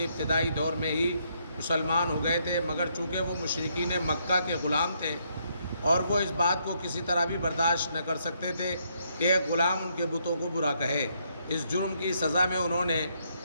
ابتدائی دور میں ہی مسلمان ہو گئے تھے، مگر چونکہ وہ مشرکین مکہ کے غلام تھے اور وہ اس بات کو کسی طرح بھی برداشت نہ کر سکتے تھے کہ ایک غلام ان کے بتوں کو برا کہے۔ اس جرم کی سزا میں انہوں نے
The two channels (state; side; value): inverted; both; correlation -0.74